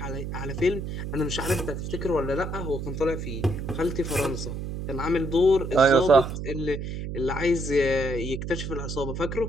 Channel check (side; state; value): right; noise; hum, 5 dB below the sound